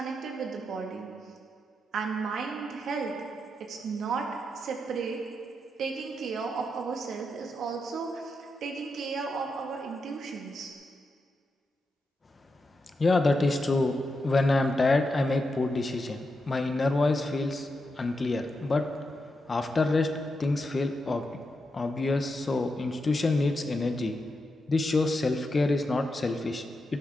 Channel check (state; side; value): normal; both; correlation 0.86